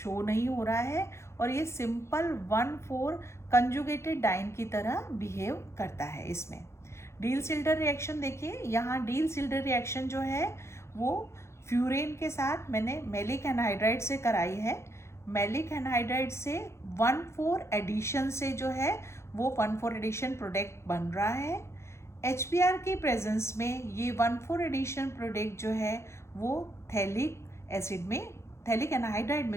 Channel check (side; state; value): right; late; 0.13 ms